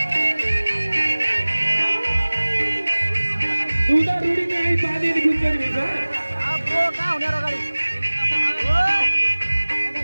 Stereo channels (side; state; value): both; inverted; correlation -1.00